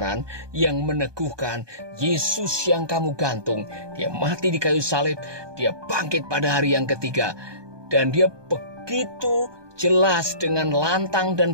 yang meneguhkan Yesus yang kamu gantung, dia mati di kayu salib, dia bangkit pada hari yang ketiga. Dan dia begitu jelas dengan lantang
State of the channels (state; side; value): late; left; 1.2 ms